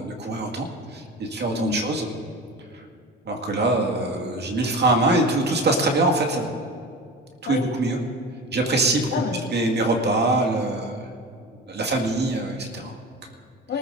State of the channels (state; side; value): normal; both; correlation 0.32